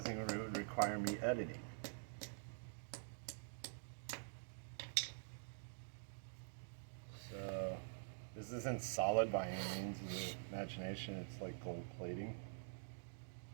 would require me editing. So this isn't solid by any means of the imagination. It's like gold plating.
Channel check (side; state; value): left; silent; digital silence